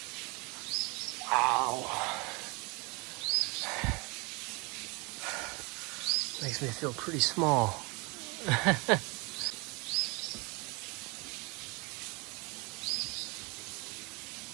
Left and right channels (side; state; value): left; quieter; 28.8 dB